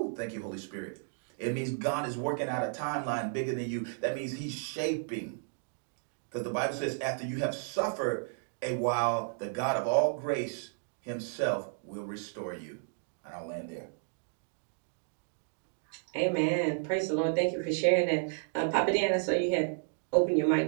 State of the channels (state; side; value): silent; left; digital silence